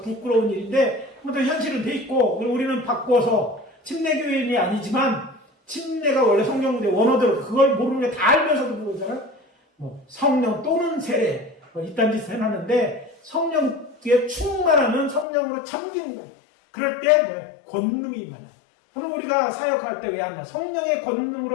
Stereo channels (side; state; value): right; drops out; at 15.2 s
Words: 부끄러운 일인데 아무튼 현실은 돼 있고, 우리는 바꿔서 침례교인이 아니지만 침례가 원래 성경 문제 원어대로 그걸 모르는 게 다 알면서도 그러잖아요. 성령 또는 세례 이딴 짓을 해놨는데, 성령에 충만하면 성령으로 잠기는 거예요. 그럴 때 권능이 임하는. 오늘 우리가 사역할 때 왜 안 나? 성령의